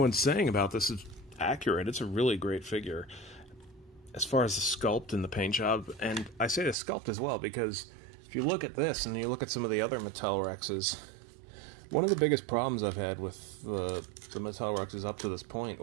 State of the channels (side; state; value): left; drops out; at 6.8 s